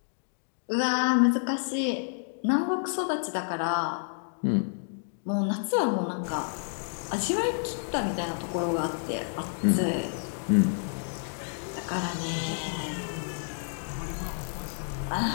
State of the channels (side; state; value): right; silent; digital silence